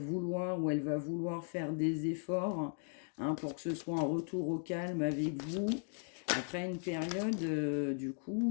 ou elle va vouloir faire des efforts, hein, pour que ce soit un retour au calme avec vous. Après une période, du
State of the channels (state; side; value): silent; right; 53 dB below the other